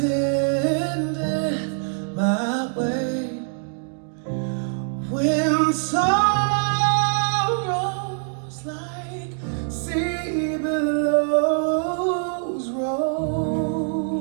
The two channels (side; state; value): left; silent; 63 dB below the other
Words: death my way. When sorrows like sea billows